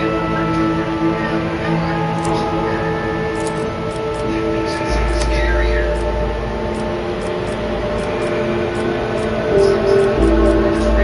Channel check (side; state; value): both; identical; correlation 1.00